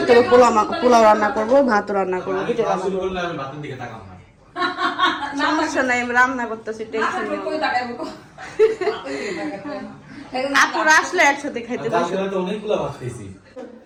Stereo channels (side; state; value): both; identical; correlation 1.00